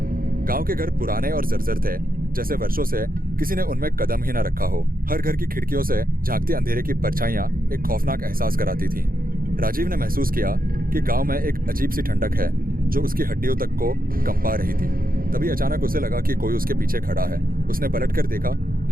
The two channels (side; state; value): left; late; 0.42 ms